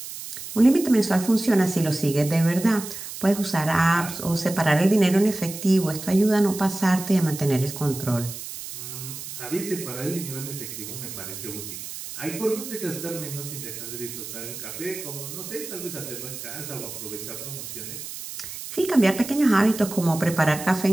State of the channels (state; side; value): noise; right; hiss, 10 dB below the sound